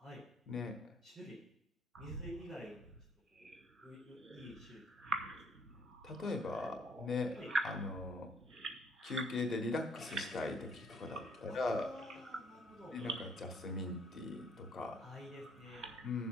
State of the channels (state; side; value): normal; both; correlation 0.63